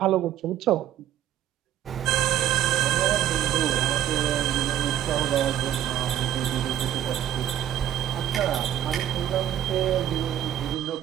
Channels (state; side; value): quieter; left; 11.4 dB